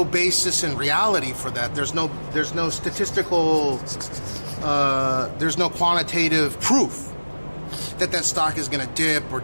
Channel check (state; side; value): inverted; both; correlation -1.00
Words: basis in reality for that. There's no statistical, there's no quantitative proof that stock is going to dip or